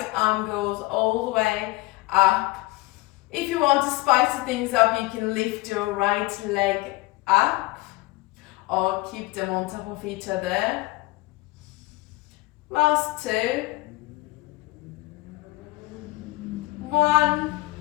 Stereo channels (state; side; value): quieter; right; 21.2 dB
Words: arm goes all the way up. If you want to spice things up, you can lift your right leg up or keep them on top of each other. Last 2. 1.